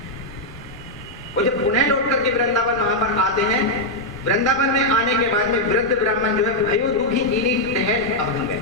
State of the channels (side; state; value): left; noise; rumble, 18 dB below the sound